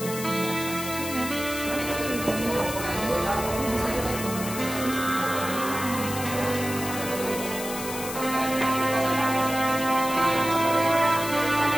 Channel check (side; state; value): left; noise; hiss, 8 dB below the sound